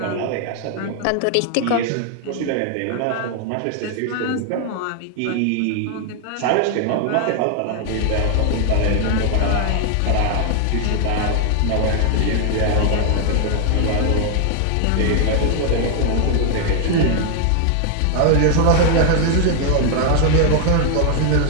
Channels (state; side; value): different; both; correlation 0.00